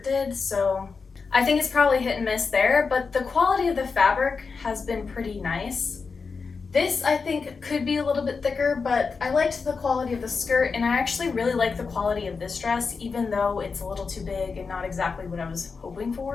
did, so I think it's probably hit and miss there, but the quality of the fabric has been pretty nice. This I think could be a little bit thicker, but I liked the quality of the skirt, and I actually really like the quality of this dress, even though it's a little too big and not exactly what I was hoping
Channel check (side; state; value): right; quieter; 4.9 dB